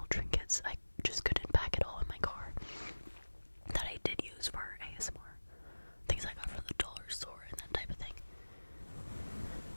trinkets. I just couldn't pack it all in my car that I did use for ASMR. Things I got from the dollar store and that type of thing.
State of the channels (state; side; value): inverted; both; correlation -1.00